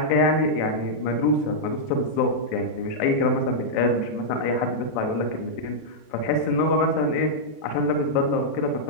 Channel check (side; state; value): right; late; 27 ms